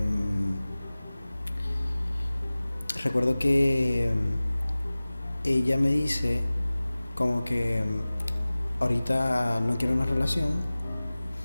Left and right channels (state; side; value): inverted; both; correlation -0.98